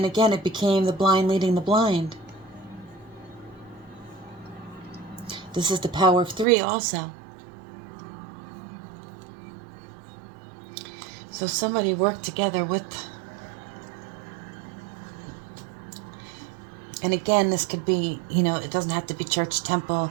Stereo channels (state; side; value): drops out; left; at 6.5 s